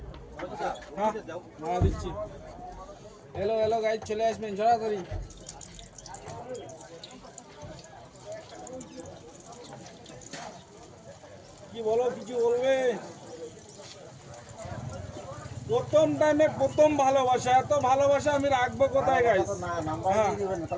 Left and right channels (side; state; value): both; identical; correlation 1.00